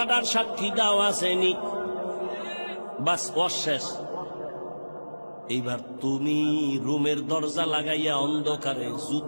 সাক্ষী দাও আসেনি, বাস অশেষ। এইবার তুমি রুমের দরজা লাগাইয়া অন্ধকারে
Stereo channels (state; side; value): inverted; both; correlation -1.00